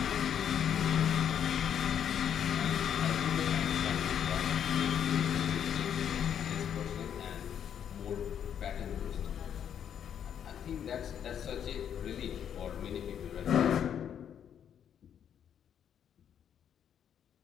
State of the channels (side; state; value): right; quieter; 8.9 dB